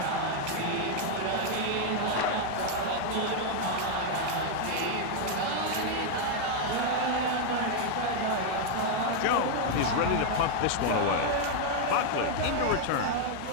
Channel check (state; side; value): different; both; correlation 0.00